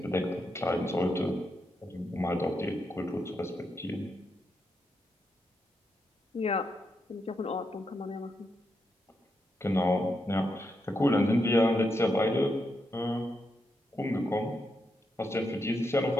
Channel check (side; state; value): both; normal; correlation 0.83